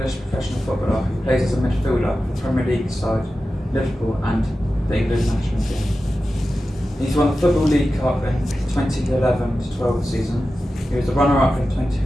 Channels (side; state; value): both; normal; correlation 0.93